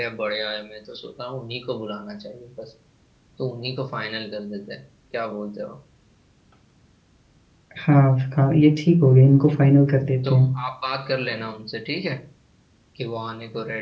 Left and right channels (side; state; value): both; identical; correlation 1.00